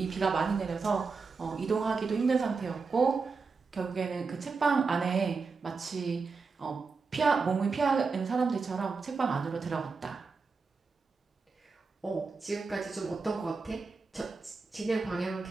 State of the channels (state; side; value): quieter; left; 4.6 dB